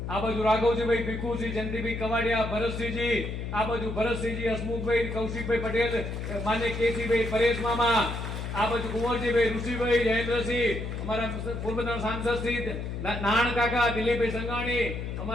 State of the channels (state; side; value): noise; left; hum, 5 dB below the sound